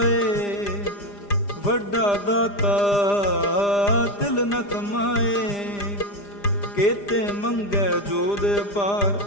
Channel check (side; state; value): right; late; 4.9 ms